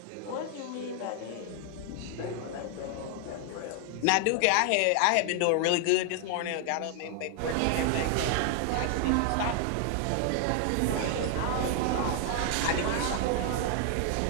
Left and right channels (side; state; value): both; different; correlation 0.00